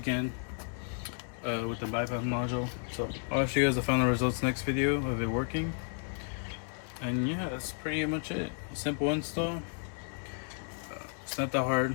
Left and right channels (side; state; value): right; silent; 56 dB below the other